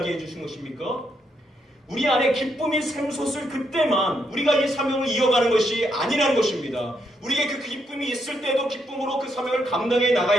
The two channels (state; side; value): normal; both; correlation 0.77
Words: 주신 것입니까? 우리 안에 기쁨이 샘솟을 그때만 우리가 이 사명을 이어가는 것이 아니라는 것입니다. 우리에게 그 기쁨이 있을 때도 기쁨으로 그 사명을 감당해